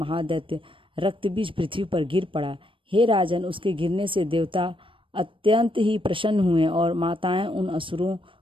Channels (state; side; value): late; left; 0.25 ms